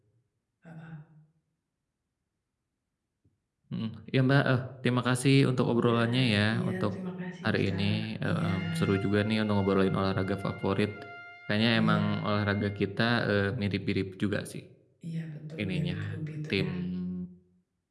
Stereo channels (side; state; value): both; identical; correlation 1.00